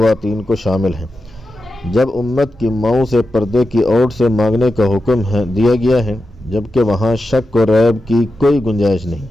کو شامل ہے۔ جب امت کی ماؤں سے پردے کی اوٹ سے مانگنے کا حکم دیا گیا ہے جبکہ وہاں شک و ریب کی کوئی گنجائش نہیں،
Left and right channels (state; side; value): normal; both; correlation 0.90